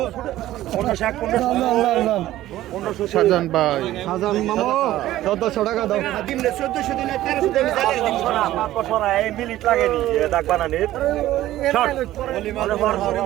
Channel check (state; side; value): quieter; left; 14.6 dB